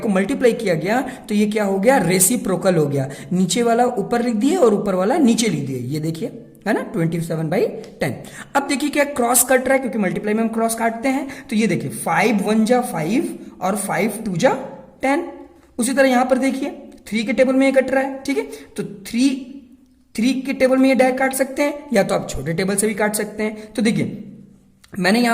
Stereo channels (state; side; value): identical; both; correlation 1.00